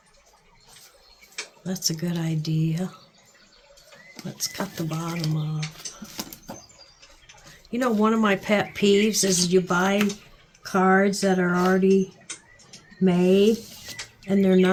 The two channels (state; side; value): identical; both; correlation 1.00